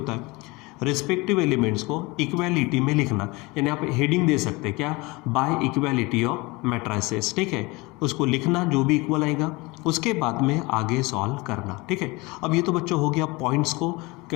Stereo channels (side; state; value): right; quieter; 23.1 dB